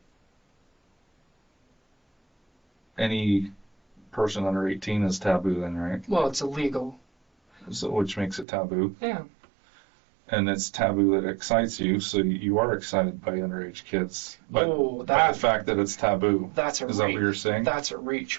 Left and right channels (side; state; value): left; drops out; at 8.5 s